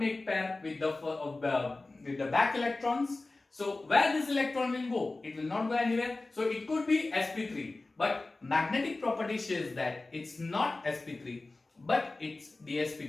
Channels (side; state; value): right; quieter; 3.2 dB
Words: pair with the back electrons. So where this electron will go? It will not go anywhere. So it could be sp3. But magnetic property says that it's not sp3, but it's